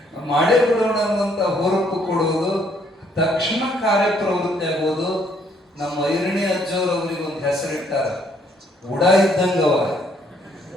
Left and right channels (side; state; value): both; normal; correlation 0.67